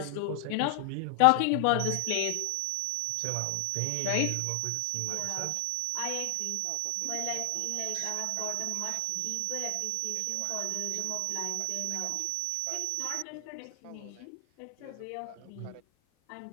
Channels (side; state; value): both; different; correlation 0.00